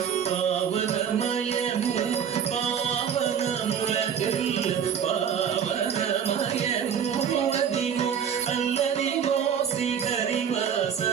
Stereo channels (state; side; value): quieter; left; 8.0 dB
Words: పావనమయము పావనములకిల్ల పావనమయము అదిగో అల్లదిగో